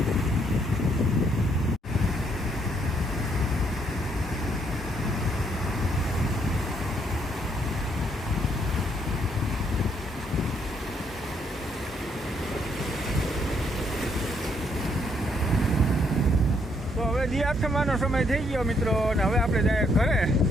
દી આઠમાનો સમય થઈ ગયો મિત્રો. અને હવે આપણે જાય ઘરે.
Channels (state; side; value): normal; both; correlation 0.71